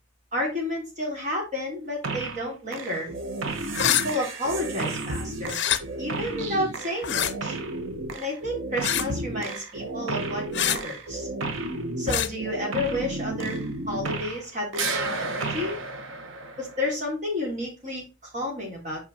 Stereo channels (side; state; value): both; normal; correlation 0.09